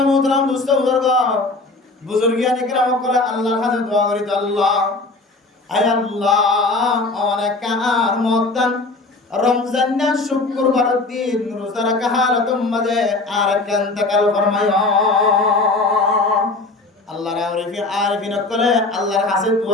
মোহতারাম দোস্ত বুজুর্গিয়ানে কেরাম করে আল্লাহর কাছে দোয়া করি তো আল্লাহ আয় আল্লাহ অনেক আর মতান রমজান না শুক্রবারের দিন রোজা রাখা হালাতুম মাঝে আর ইন্তেকাল ফরমায় আল্লাহর আরিফিন করে আল্লাহর কাছে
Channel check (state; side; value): quieter; right; 3.3 dB